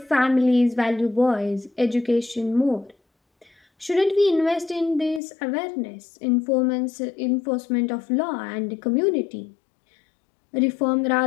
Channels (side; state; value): right; drops out; at 5.2 s